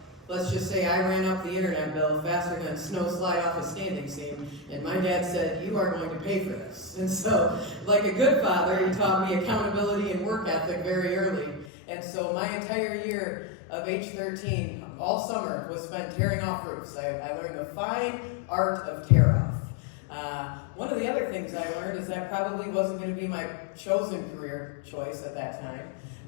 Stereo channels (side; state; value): right; drops out; at 11.7 s